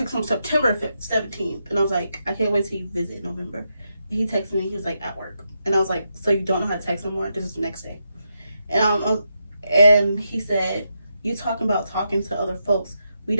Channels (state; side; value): inverted; both; correlation -0.84